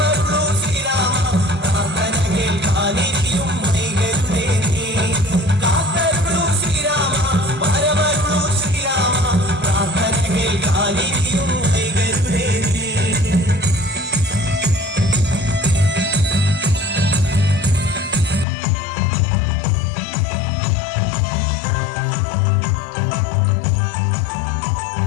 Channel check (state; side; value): drops out; right; at 18.4 s